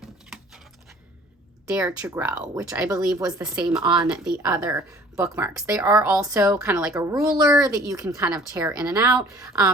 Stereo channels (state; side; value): normal; both; correlation 0.51